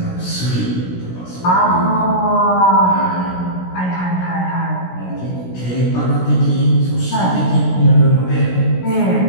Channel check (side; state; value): right; late; 16 ms